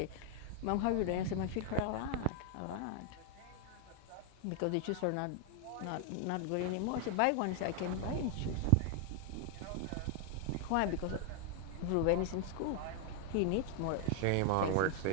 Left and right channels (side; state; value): both; different; correlation 0.00